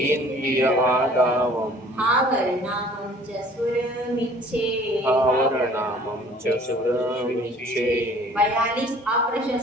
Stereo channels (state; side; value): normal; both; correlation 0.52